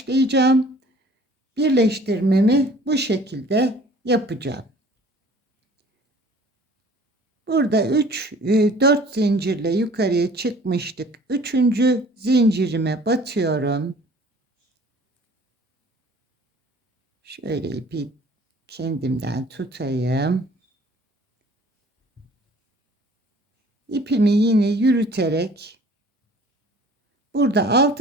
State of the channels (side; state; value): both; normal; correlation 0.51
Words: Birleştirmemi bu şekilde yapacağım. Burada 4 zincirle yukarıya çıkmıştık. 3. zincirime batıyorum. Şöyle ipi kendimden tutayım. İpimi yine yürüterek burada